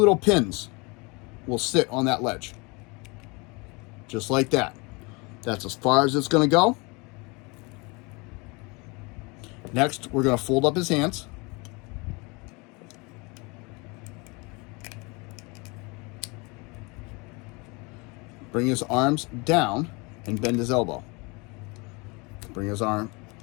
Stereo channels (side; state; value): right; quieter; 28.1 dB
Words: pins will sit on that ledge. Just like that. That's as far as it's going to go. Next, we're going to fold up his hands. Bring his arms down and bend his elbow. Bring his arm